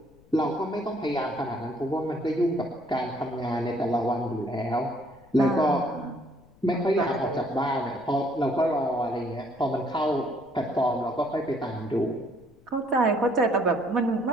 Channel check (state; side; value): noise; left; rumble, 28 dB below the sound